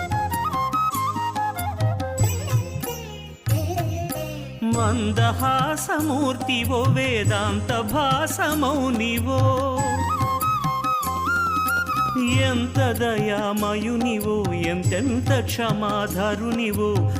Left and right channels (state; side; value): identical; both; correlation 1.00